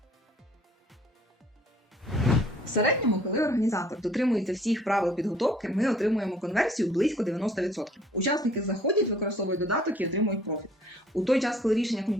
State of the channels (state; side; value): normal; both; correlation 0.56